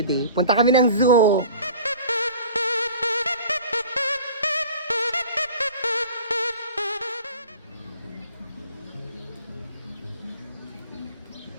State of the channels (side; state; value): both; inverted; correlation -0.43